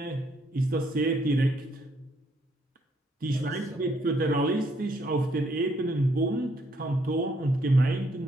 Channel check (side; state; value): both; normal; correlation 0.70